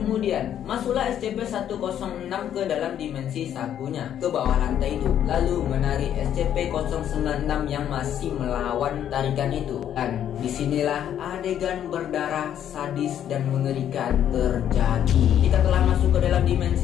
masuklah SCP-106 ke dalam dimensi sakunya ke bawah lantai itu, lalu menarik SCP-096 yang masih melawan tarikan itu. Dan disinilah adegan berdarah, sadis dan mengerikan terjadi. Jika telah masuk ke dalam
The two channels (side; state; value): right; quieter; 10.2 dB